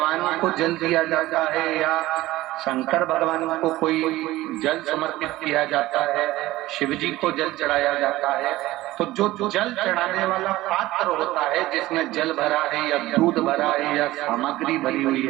को जल दिया जाता है या शंकर भगवान को कोई जल समर्पित किया जाता है, शिव जी को जल चढ़ाया जाता है, तो जो जल चढ़ाने वाला पात्र होता है जिसमें जल भरा है या दूध भरा है या सामग्री भरी हुई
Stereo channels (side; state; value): left; quieter; 17.2 dB